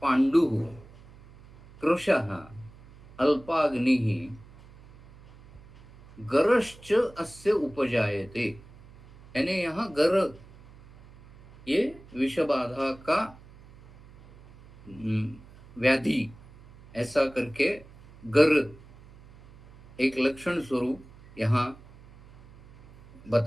पाण्डुः कृशः अल्पाग्निः गरश्च अस्य उपजायते। यानी यहाँ गर ये विषबाधा का व्याधि ऐसा करके गर एक लक्षण स्वरूप यहाँ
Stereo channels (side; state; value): right; noise; hum, 23 dB below the sound